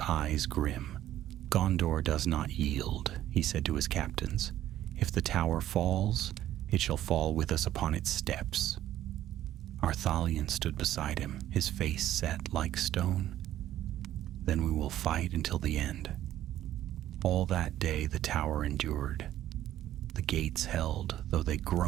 grim. Gondor does not yield, he said to his captains. If the tower falls, it shall fall with us upon its steps. Arthalion stood beside him, his face set like stone. Then we will fight until the end. All that day the tower endured. The gates held, though they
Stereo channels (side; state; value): left; quieter; 12.8 dB